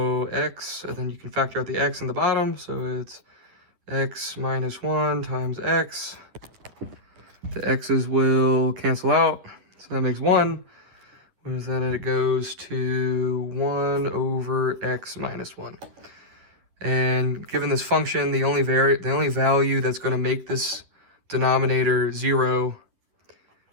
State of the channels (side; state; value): left; late; 11 ms